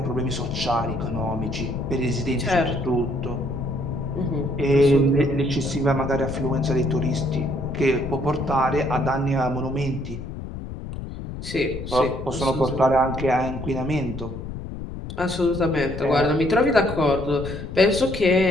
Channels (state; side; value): noise; left; rumble, 9 dB below the sound